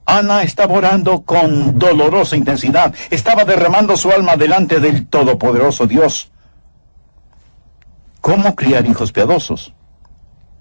Ana estaba orando con dolorosa intensidad, estaba derramando su alma delante del todopoderoso Dios. ¿Cómo criar hijos piadosos?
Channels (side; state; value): both; inverted; correlation -1.00